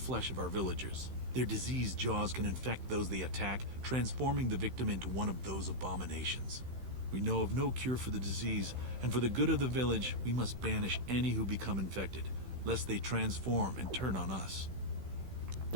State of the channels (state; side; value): late; left; 16 ms